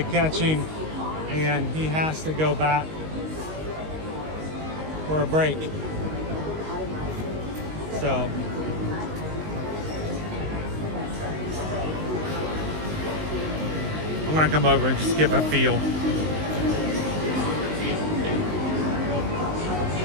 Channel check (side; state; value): left; late; 19 ms